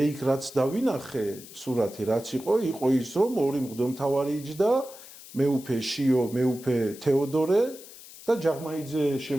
იქ რაც დავინახე სურათი რაც იყო ის რომ ორი მღვდელმთავარი იჯდა, მეუფე შიო, მეუფე თეოდორე და ჯაღმაიძე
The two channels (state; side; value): noise; left; hiss, 17 dB below the sound